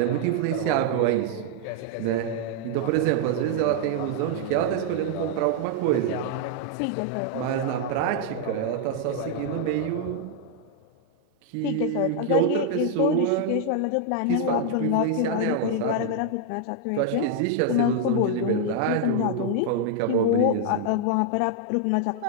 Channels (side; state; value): both; different; correlation 0.00